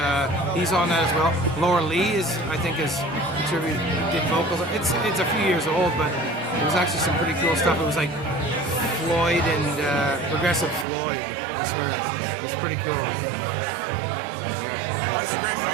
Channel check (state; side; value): drops out; left; at 10.9 s